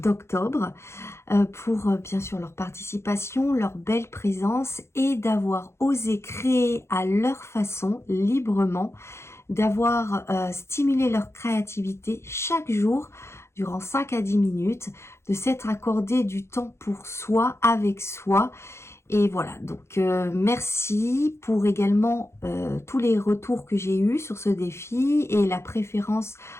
pour bien sûr leur participation, leur belle présence et d'avoir osé créer à leur façon, librement, d'avoir stimulé leur créativité chaque jour durant 5 à 10 minutes, de s'être accordé du temps pour soi, avec soi. Et voilà, donc merci pour également tous les retours que j'ai eus sur ce défi et la préférence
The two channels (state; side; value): late; right; 0.13 ms